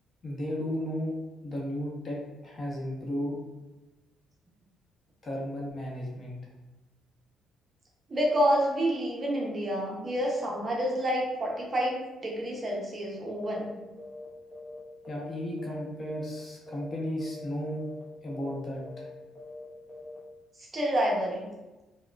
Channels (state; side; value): normal; both; correlation 0.78